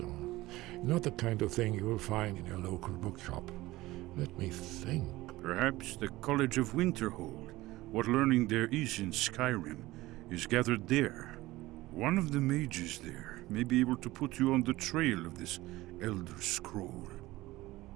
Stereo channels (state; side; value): quieter; left; 18.3 dB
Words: Not the kind of thing you will find in your local bookshop. Let me think. Perhaps the College of Winterhold, what learning there is in Skyrim, is gathered there. One of the mages there may be able to put you on the trail of this Elder Scroll.